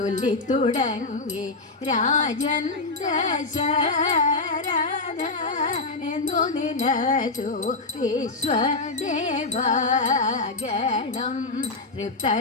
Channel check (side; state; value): right; quieter; 3.5 dB